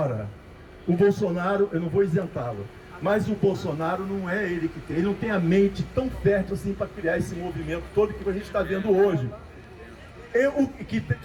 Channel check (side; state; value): both; identical; correlation 1.00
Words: O Bolsonaro, eu não vou isentá-lo, mas o Bolsonaro não é ele que tem, ele não tem a mente tão fértil assim para criar esse movimento todo que a gente está vendo hoje. O que